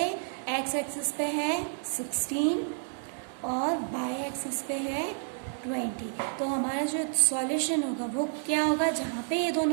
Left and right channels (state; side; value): silent; left; digital silence